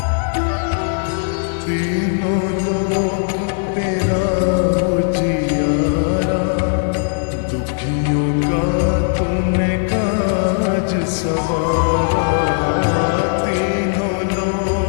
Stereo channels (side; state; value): right; silent; 67 dB below the other